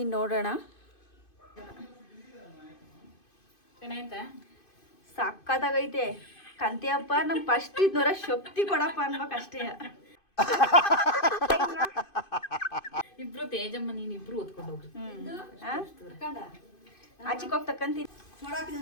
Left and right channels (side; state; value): right; late; 2.5 ms